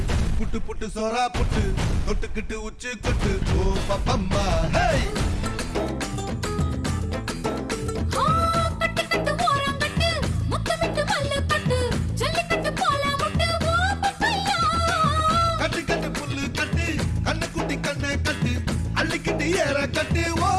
புட்டு புட்டு சோரா புட்டு தொட்டுக்கிட்டு உச்சு கொட்டு ஓ பப்பம்மா கட்டு கட்டு ஓரம் கட்டு முத்து விட்டு மல்லு கட்டு ஜல்லிக்கட்டு போல முட்டு ஓ பப்பையா கட்டு கட்டு புல்லு கட்டு கண்ணு குட்டி கண்ணை கட்டு அள்ளிக்கிட்டு ஏற கட்டு ஓ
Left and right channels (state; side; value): identical; both; correlation 1.00